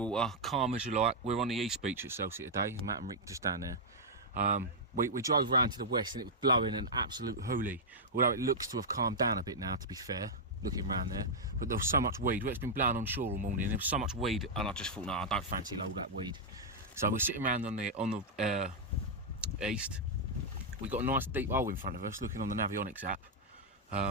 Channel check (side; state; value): both; normal; correlation -0.04